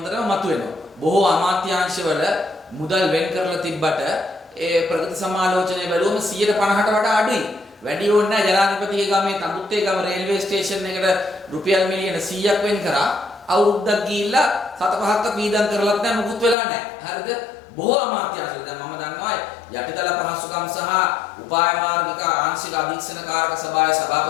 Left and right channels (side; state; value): right; drops out; at 16.6 s